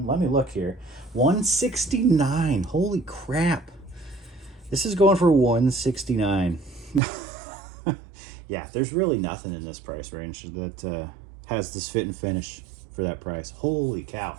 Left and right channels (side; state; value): left; drops out; at 7.0 s